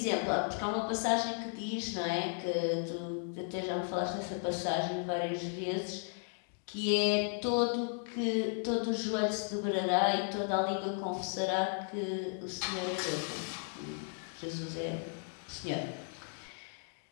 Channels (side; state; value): right; silent; 54 dB below the other